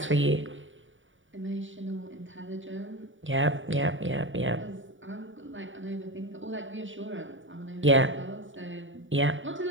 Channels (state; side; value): late; left; 0.56 ms